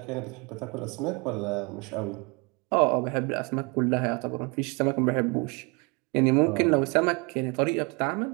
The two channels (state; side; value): quieter; left; 30.1 dB